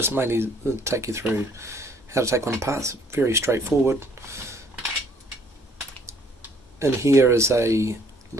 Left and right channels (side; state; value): both; normal; correlation 0.61